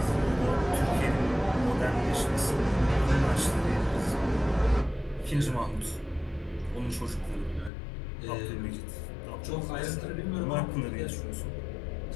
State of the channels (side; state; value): right; drops out; at 7.7 s